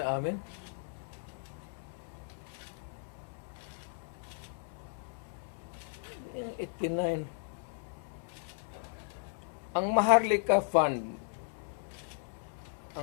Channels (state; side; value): silent; right; 54 dB below the other